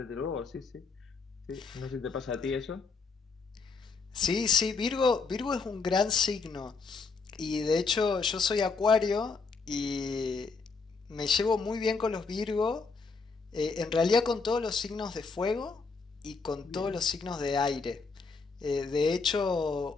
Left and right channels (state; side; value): quieter; right; 4.5 dB